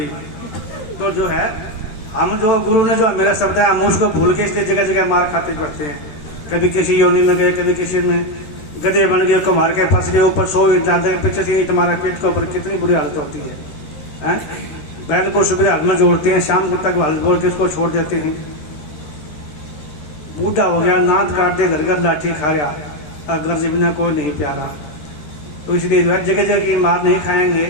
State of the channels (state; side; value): late; right; 13 ms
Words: तो जो है हम जो गुरु ने जो मेरा शब्द है, हम उसको भूल के इसलिए जगह जगह मार खाते पड़ते हैं। कभी किसी योनि में गए, कभी किसी में गधे बन गए, मार के फंस गए, ऊपर 100 इंच पीछे से तुम्हारे पेट के ऊपर, कितनी बुरी हालत होती है। बैल को सुबह हल में जोड़ते हैं, शाम को तक हल बोल के उसको छोड़ देते हैं। बूढ़ा हो गया, नाथ काट दे, घर घर लाठी खा रहा, अगर से बिना कोई नहीं प्यारा। तो इसलिए जो है जगह जगह की मार नहीं खाएंगे।